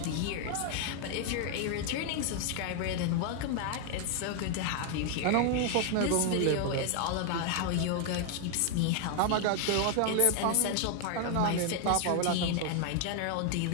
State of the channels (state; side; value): different; both; correlation 0.00